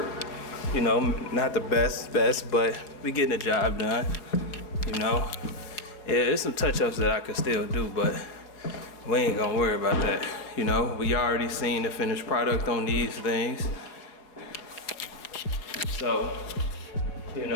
You know, not the best, but we getting the job done. You know. Yeah, there's some touch-ups that I could still do, but we ain't gonna worry about that. You know, we already seen the finished product on these things. So, you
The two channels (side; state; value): right; late; 5.0 ms